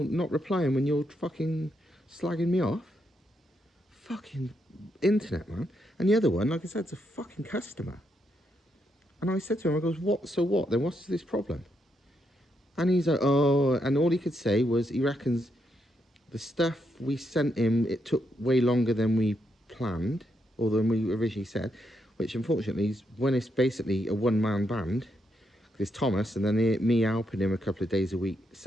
not replying when you're fucking slagging me off? Fucking internet, man. And the other one, like I said, it's a fucking customer. And I said to him, I goes, what, so what? Then what's this problem? And he's like, oh, and all he could say was he reckons the stuff we sent him, it took way longer than we planned, or than we originally said, which unfortunately is when it's basically a one-man band. There's Thomas, and then me helping him a couple of days a week,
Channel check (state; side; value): normal; both; correlation 0.80